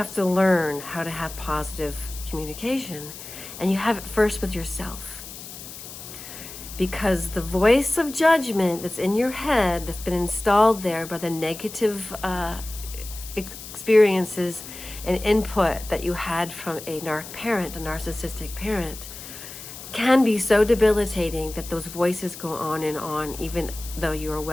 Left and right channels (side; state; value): left; noise; hiss, 13 dB below the sound